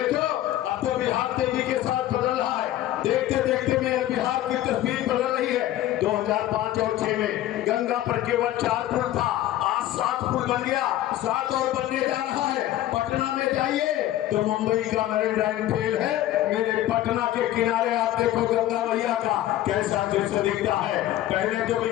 अब तो बिहार तेजी के साथ बदल रहा है। देखते देखते मेरे बिहार की तस्वीर बदल रही है। 2005 और 6 में गंगा पर केवल 4 पुल था, आज 7 पुल बन गया, 7 और बनने जा रहा है। पटना में जाइए तो मुंबई का मैरीन फेल है, मेरे पटना के किनारे आप देखो गंगा मैया का कैसा दृश्य दिखता है। पहले तो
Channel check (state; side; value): quieter; right; 13.8 dB